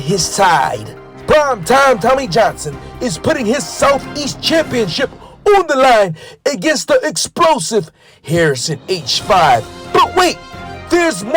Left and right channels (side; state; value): both; identical; correlation 1.00